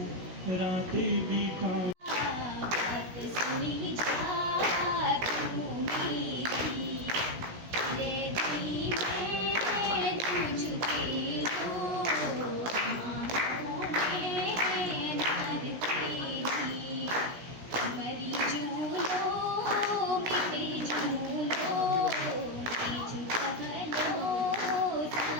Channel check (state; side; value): late; left; 17 ms